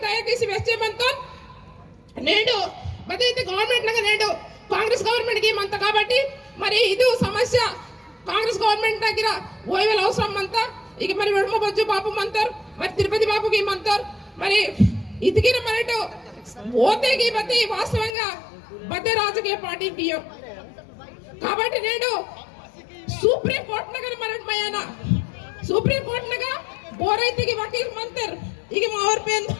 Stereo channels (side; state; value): right; drops out; at 18.2 s